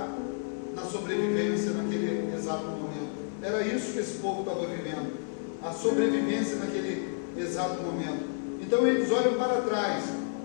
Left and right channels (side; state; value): right; silent; 58 dB below the other